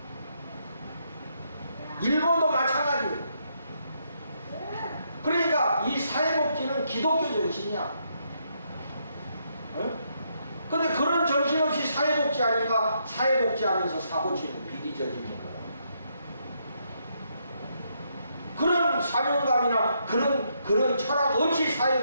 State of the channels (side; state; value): both; inverted; correlation -0.76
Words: 일본도 마찬가지예요. 그러니까 이 사회복지는 기독교 정신이야. 근데 그런 정신 없이 사회복지 하니까 사회복지 하면서 사고치는 비리 저지르는 거야. 그런 사명감이나 그런 철학 없이